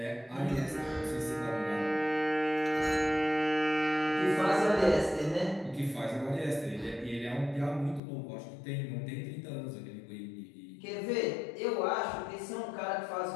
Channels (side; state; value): right; drops out; at 8.0 s